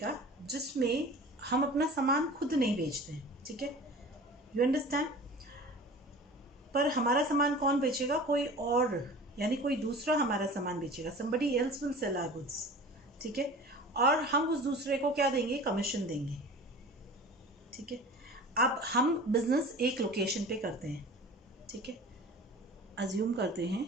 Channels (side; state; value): both; normal; correlation 0.39